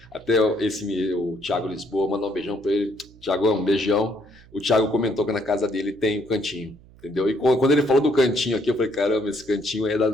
Até o Thiago Lisboa, mandar um beijão para ele. Thiagão, um beijão. O Thiago comentou que na casa dele tem um cantinho, entendeu? E quando ele falou do cantinho aqui, eu falei, caramba, esse cantinho é da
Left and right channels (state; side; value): noise; right; hum, 24 dB below the sound